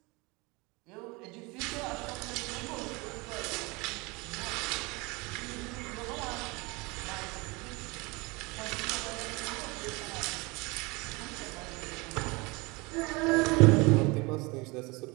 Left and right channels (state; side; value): quieter; left; 25.8 dB